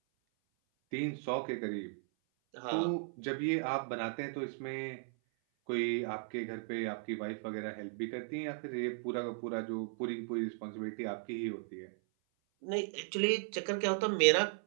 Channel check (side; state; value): left; silent; 53 dB below the other